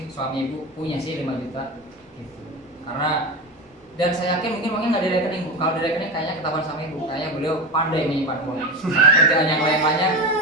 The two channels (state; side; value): normal; both; correlation 0.21